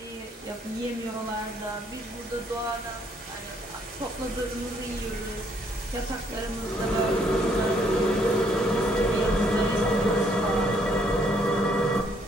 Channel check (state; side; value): normal; both; correlation 0.68